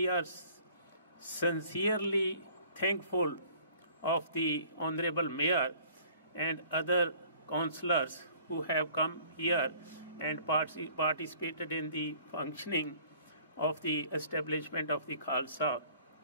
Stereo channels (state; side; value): inverted; both; correlation -0.53